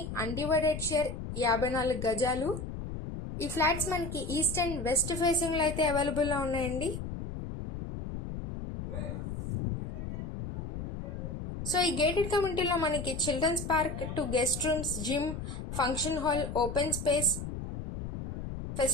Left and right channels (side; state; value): left; noise; rumble, 6 dB below the sound